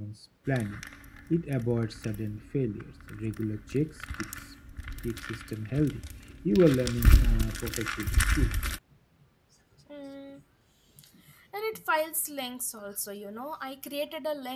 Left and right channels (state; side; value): identical; both; correlation 1.00